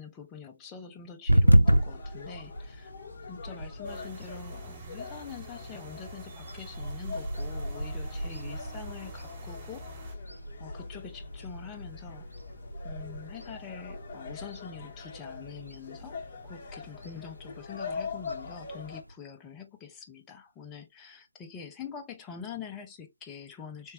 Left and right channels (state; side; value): inverted; both; correlation -0.92